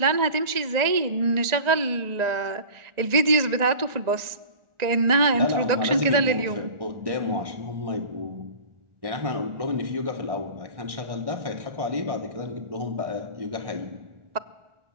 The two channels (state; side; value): late; left; 1.9 ms